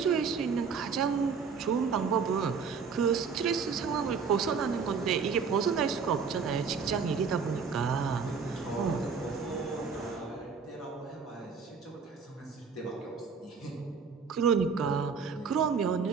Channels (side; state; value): left; quieter; 5.7 dB